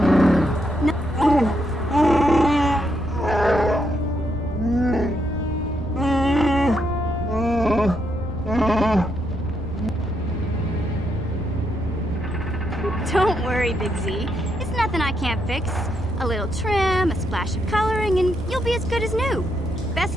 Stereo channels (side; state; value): both; normal; correlation 0.78